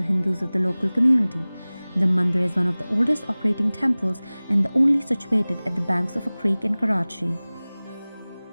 Hindus of the local community. The mandir is one of the oldest operating temples and the only situated at the banks of a creek in Karachi.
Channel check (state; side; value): inverted; both; correlation -0.99